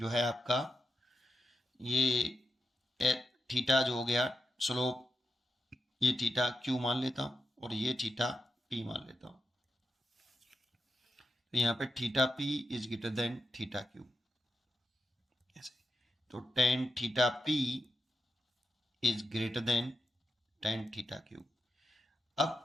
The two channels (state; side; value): normal; both; correlation 0.86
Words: है आपका, ये थीटा जो हो गया स्लोप, ये थीटा Q मान लेता हूं और ये थीटा P मान लेता हूं। तो यहां पे theta P is greater then theta Q, ऐसे। तो tan theta P is greater then tan theta Q।